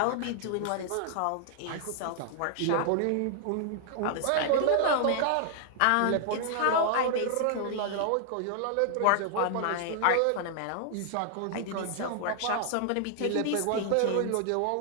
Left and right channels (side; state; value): both; different; correlation 0.00